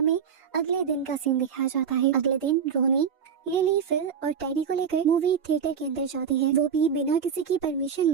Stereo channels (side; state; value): left; quieter; 7.1 dB